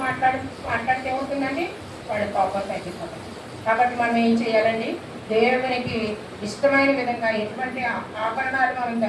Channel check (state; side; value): identical; both; correlation 1.00